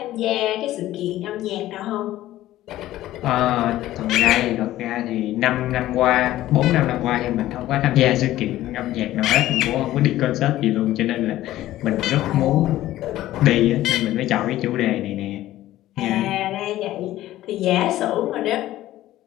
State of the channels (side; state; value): right; quieter; 14.7 dB